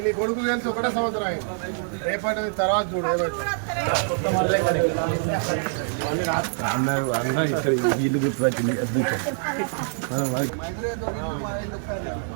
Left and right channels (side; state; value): left; silent; 62 dB below the other